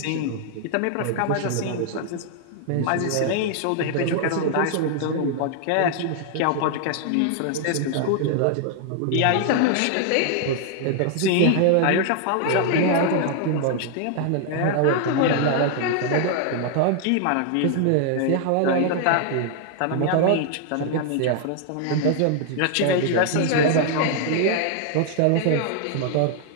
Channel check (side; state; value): both; different; correlation 0.00